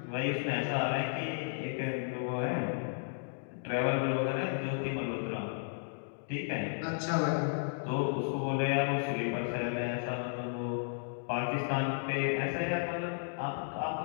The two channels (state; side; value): silent; right; digital silence